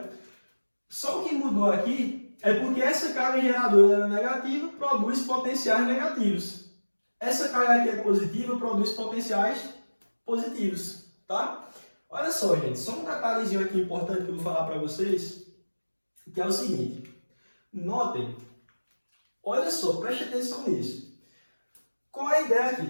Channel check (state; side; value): inverted; both; correlation -1.00